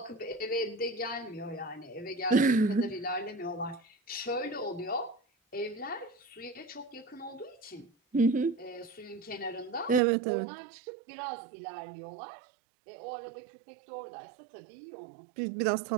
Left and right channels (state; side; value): drops out; left; at 10.0 s